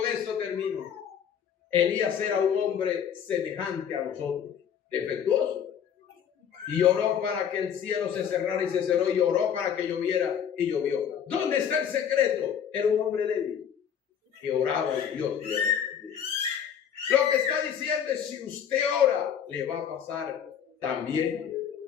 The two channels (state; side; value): quieter; right; 8.4 dB